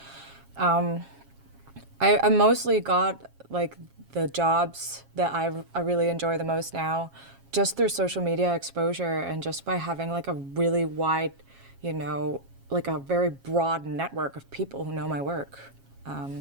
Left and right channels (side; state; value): left; late; 7.4 ms